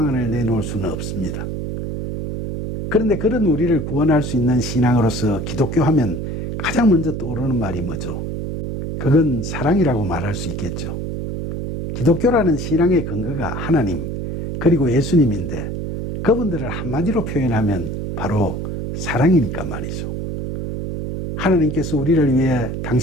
내놓을 수는 없습니다. 그런데 그런 우리를 구원할 수 있는 신앙으로서 기독교 하면 가장 먼저 떠오르는 말이 뭐죠? 그건 사랑이라고 말할 수 있겠죠. 기독교라는 신앙의 근거가 하나님, 그리고 예수님인데 그분들을 한마디로 표현하면 바로 사랑이니까 말이죠. 하나님께서 우리를 위해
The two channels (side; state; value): right; noise; hum, 4 dB below the sound